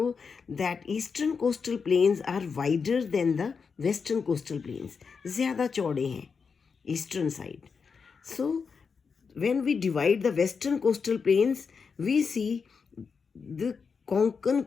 that eastern coastal plains are wider than the western coastal plains. ज़्यादा चौड़े हैं eastern side. So, when we divide the western coastal plains, we see the Konkan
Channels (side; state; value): right; quieter; 5.6 dB